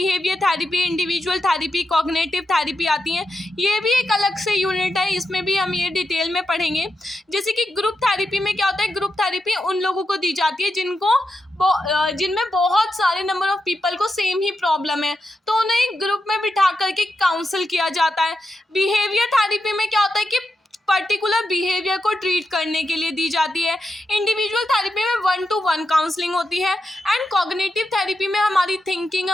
therapy, individual therapy, cognitive therapy आती हैं। ये भी एक अलग से यूनिट है, इसमें भी हम ये डिटेल में पढ़ेंगे। जैसे कि ग्रुप थेरेपी में क्या होता है, ग्रुप थेरेपी उन लोगों को दी जाती है जिनमें बहुत सारे नंबर ऑफ पीपल को सेम ही प्रॉब्लम है, तो उन्हें एक ग्रुप में बिठा करके काउंसिल किया जाता है। बिहेवियर थेरेपी में क्या होता है कि पर्टिकुलर बिहेवियर को ट्रीट करने के लिए दी जाती है। इंडिविजुअल थेरेपी में 1-to-1 काउंसलिंग होती है एंड कॉग्निटिव थेरेपी में हमारी थिंकिंग,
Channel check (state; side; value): normal; both; correlation 0.87